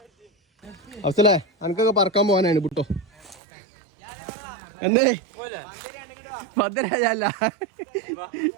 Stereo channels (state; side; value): drops out; left; at 3.4 s